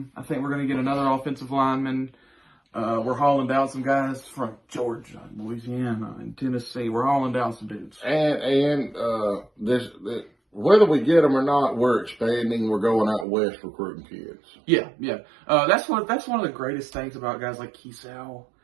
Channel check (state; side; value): drops out; left; at 13.2 s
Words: I think we're going to get another offensive lineman. We're hauling down some guys from Georgia, Louisiana, and Tennessee. We're hauling down some dudes. And whether we get them or not, we're expanding. We're going out west recruiting kids. Yeah. That's one of the greatest things about guys like Keesau